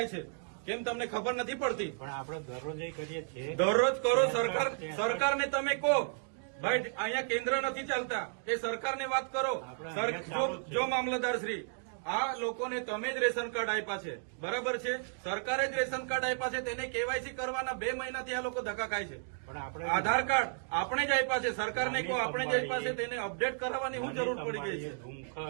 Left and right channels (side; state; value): left; silent; digital silence